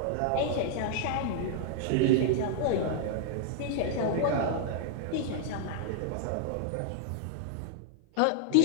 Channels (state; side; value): different; both; correlation -0.01